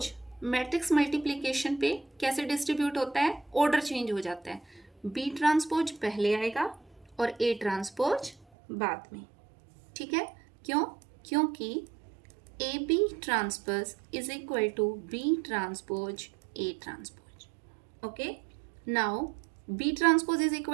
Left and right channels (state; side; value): drops out; left; at 8.5 s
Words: मैट्रिक्स मल्टीप्लिकेशन पे कैसे डिस्ट्रीब्यूट होता है? ऑर्डर चेंज हो जाता है. बी ट्रांसपोज पहले आएगा और ए ट्रांसपोज बाद में. ठीक है, क्यों? क्योंकि A B transpose is equal to B transpose A transpose. Okay, now B transpose is